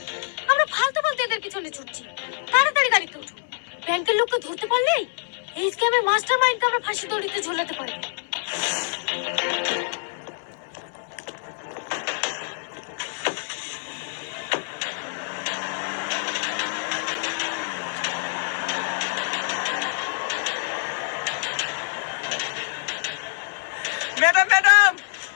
আমরা ফালতু ফালতু এদের পিছনে ছুটছি। তাড়াতাড়ি গাড়িতে উঠো, ব্যাংকের লোককে ধরতে পারলেই এই স্ক্যামের মাস্টার মাইন্ডকে আমরা ফাঁসি দড়িতে ঝোলাতে পারবো। ম্যাডাম ম্যাডাম,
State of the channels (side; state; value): right; silent; 61 dB below the other